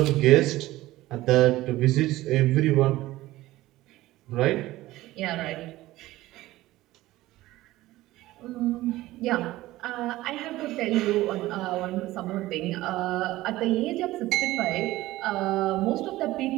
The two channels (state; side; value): quieter; left; 17.0 dB